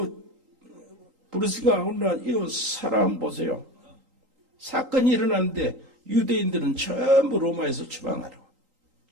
브루스가 오늘 이 사람 보세요. 사건이 일어났는데 유대인들은 전부 로마에서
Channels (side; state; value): left; late; 3.8 ms